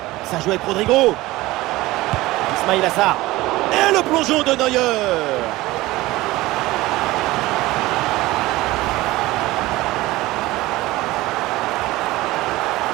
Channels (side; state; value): left; quieter; 18.7 dB